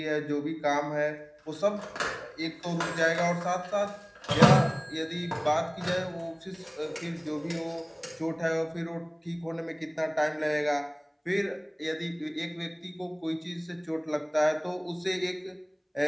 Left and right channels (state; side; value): identical; both; correlation 1.00